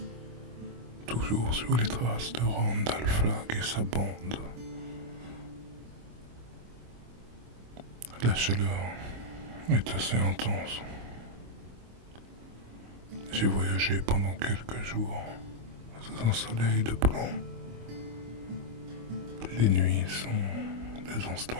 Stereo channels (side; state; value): left; late; 25 ms